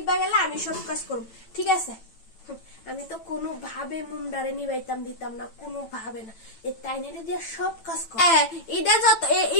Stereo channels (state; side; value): late; right; 9.0 ms